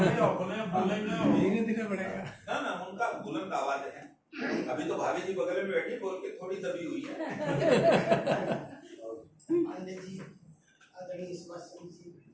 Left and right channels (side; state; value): both; identical; correlation 1.00